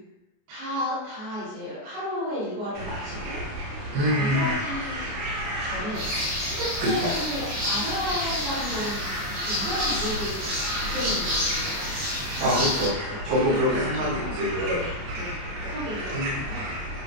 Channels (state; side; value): late; left; 28 ms